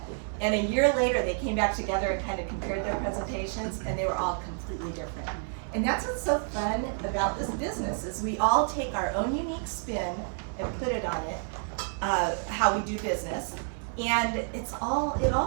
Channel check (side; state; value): left; silent; 58 dB below the other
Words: And a year later, they came back together and kind of compared their presentations and they were all completely different. And that's what's so fun about this business, is we all take our own unique spin and put it on it, how we do business. And it